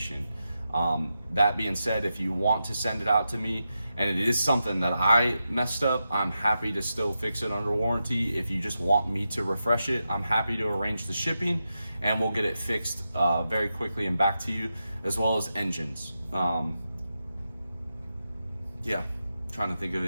That being said, if you want to send it out to me and it is something that I messed up, I'm happy to still fix it under warranty. If you just want me to refresh it, I'm happy to arrange the shipping and we'll get it fixed very quickly and back to you, as well as engines. Yeah, trying to think of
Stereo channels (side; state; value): both; inverted; correlation -0.88